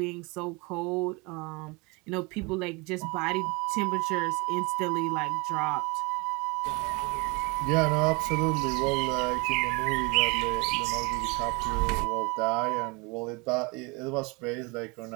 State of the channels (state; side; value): quieter; left; 28.7 dB